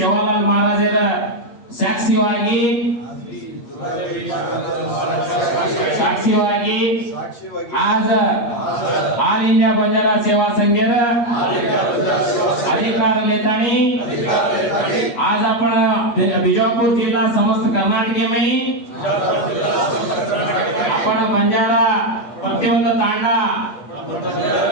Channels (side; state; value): right; late; 8.6 ms